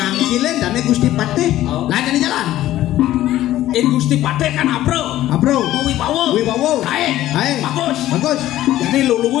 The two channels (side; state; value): right; quieter; 14.1 dB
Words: dan Gusti Patih lain yang di jalan In Gusti Patih kan apro. Wibawa. Hai. Bagus. Jadi lu